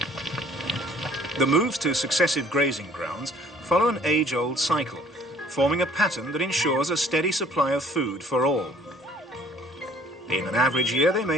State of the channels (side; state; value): both; normal; correlation 0.57